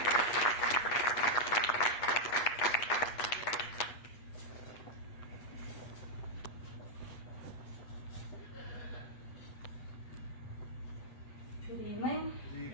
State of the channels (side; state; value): right; late; 8.2 ms